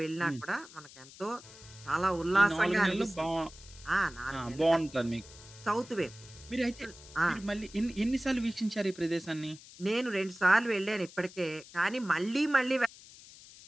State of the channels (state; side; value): noise; left; hiss, 19 dB below the sound